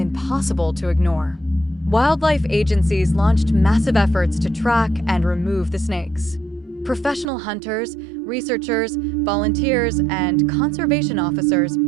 to ignore. Wildlife agencies launched massive efforts to track and remove the snakes. Professional hunters, researchers, volunteers, and conservation officers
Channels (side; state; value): left; drops out; at 7.2 s